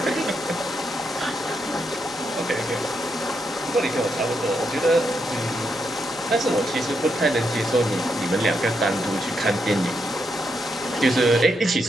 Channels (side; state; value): both; normal; correlation 0.81